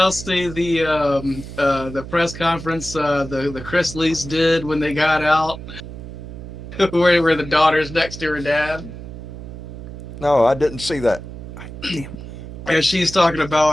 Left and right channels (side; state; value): right; noise; hum, 11 dB below the sound